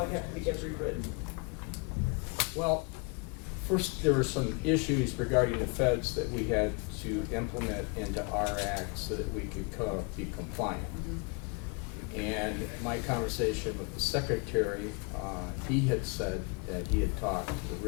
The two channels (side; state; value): right; quieter; 32.6 dB